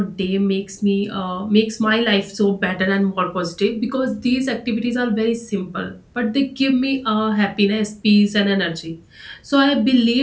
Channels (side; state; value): both; identical; correlation 1.00